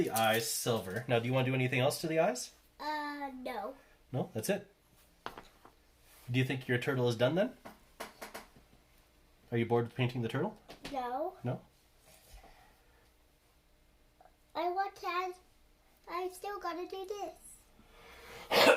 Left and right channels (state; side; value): identical; both; correlation 1.00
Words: eyes silver. Now, do you want to do anything else to the eyes? No. No, that's it. Do you think your turtle is done then? Are you bored with painting the turtle? No. No? I still gotta do this.